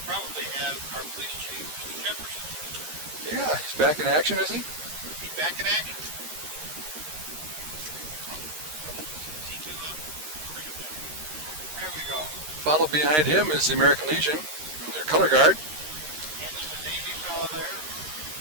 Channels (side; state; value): left; late; 13 ms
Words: have our police chief, Mr. Jefferson. Yeah, he's back in action, is he? He's back in action. Is he too loud? Turn him down. There we go. Followed behind him is the American Legion in their color guard. And there's a Navy fellow there.